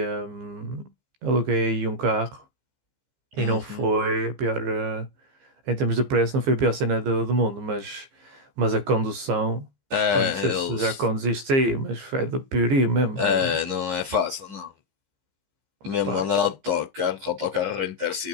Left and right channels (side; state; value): left; late; 15 ms